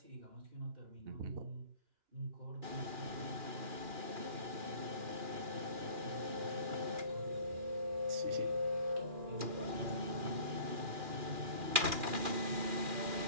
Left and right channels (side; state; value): left; late; 2.4 ms